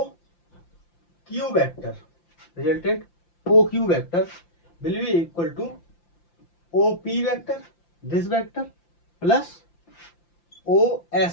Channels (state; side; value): late; right; 5.8 ms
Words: Q vector, resultant O Q vector will be equal to O P vector, this vector plus O